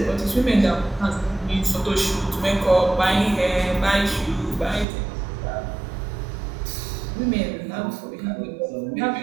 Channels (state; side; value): drops out; left; at 4.9 s